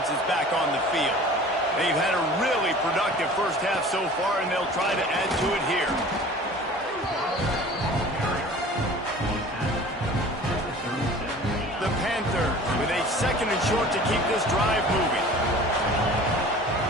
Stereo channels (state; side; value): normal; both; correlation 0.43